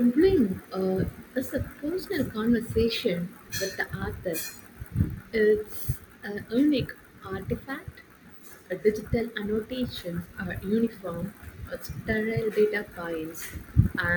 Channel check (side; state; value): both; identical; correlation 1.00